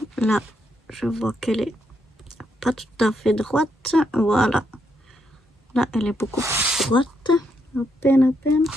Là, je vois qu'elle est pas tout à fait droite. Voilà. Là, elle est beaucoup plus droite. À peine, à peine.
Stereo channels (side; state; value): both; normal; correlation 0.78